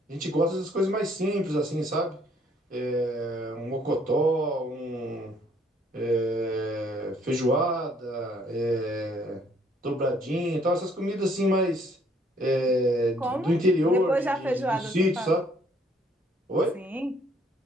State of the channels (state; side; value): normal; both; correlation 0.64